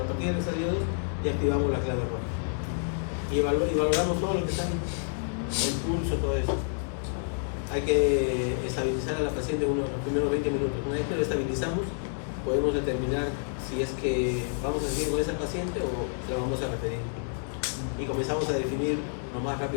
a partir del estadio 2 ya activamos la clave roja. Y valoramos todo lo que está ahí, el pulso, todo eso. Hay que estabilizar a la paciente los primeros 20 minutos. Una vez que lo estabilizamos, podemos determinar si es que vamos a seguir con esa paciente o la vamos a referir. Y comenzamos a definir lo más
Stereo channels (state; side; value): silent; right; digital silence